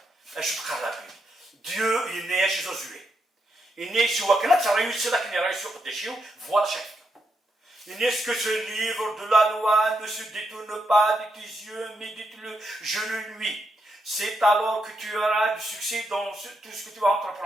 je te parle la Bible. Dieu est né chez Josué. Il est né chez Wakana, ça réussit là qu'il est réussi au déchet, voilà chaque. Il est ce que ce livre de la loi ne se détourne pas de tes yeux, mais dites-le, je le lui. C'est alors que tu auras du succès dans tout ce que tu vas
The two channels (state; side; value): normal; both; correlation 0.82